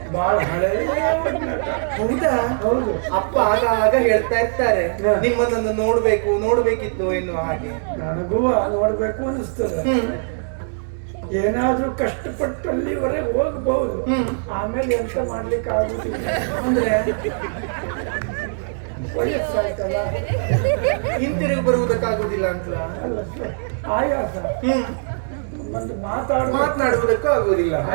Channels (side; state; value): left; silent; digital silence